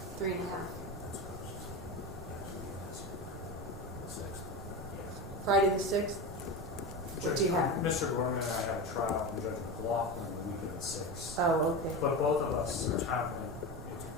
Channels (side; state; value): both; normal; correlation 0.23